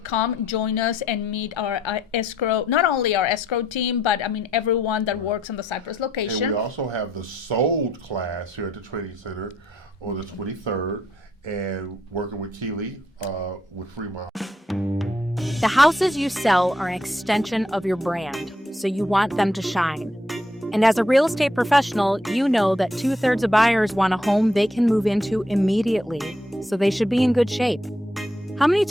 come join us and meet our escrow, not only our escrow team, but I mean everyone that works on the Cypress location. And we also have the Sold class here at the training center on the 23rd, and working with Keely with Fremont. The houses you sell are an extension of your brand, so you want them to shine. And as a real estate professional, you know that 2/3 of buyers want a home they can move into immediately, so they should be in good shape. How many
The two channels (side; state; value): both; normal; correlation 0.74